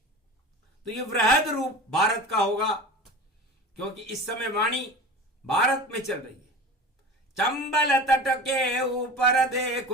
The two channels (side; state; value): both; normal; correlation 0.34